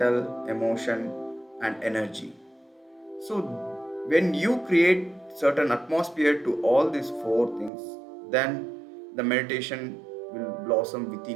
emotion, and energy. So when you create certain atmosphere to all these four things, then the meditation will blossom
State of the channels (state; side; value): drops out; left; at 7.7 s